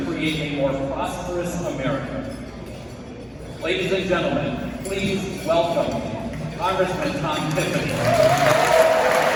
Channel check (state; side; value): identical; both; correlation 1.00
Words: create a more prosperous America. Ladies and gentlemen, please welcome Congressman Tiffany.